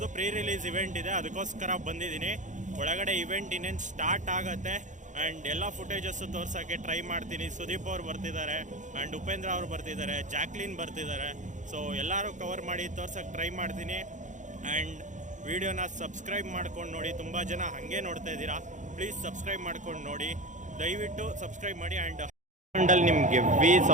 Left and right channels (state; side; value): late; left; 0.36 ms